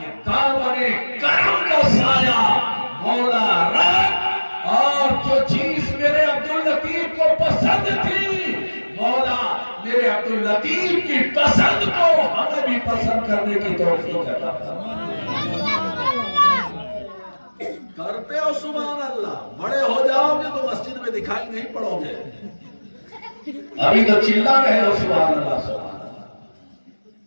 دامن کرم کا سایہ مولا رکھ، اور جو چیز میرے عبداللطیف کو پسند تھی، مولا میرے عبداللطیف کی پسند کو ہمیں بھی پسند کرنے کی توفیق عطا فرما۔ کرتے ہو سبحان اللہ، بڑے ہو جاؤ گے تو مسجد میں دکھائی نہیں پڑو گے، ابھی تو چلا رہے ہو سبحان اللہ سبحان اللہ۔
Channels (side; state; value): both; inverted; correlation -1.00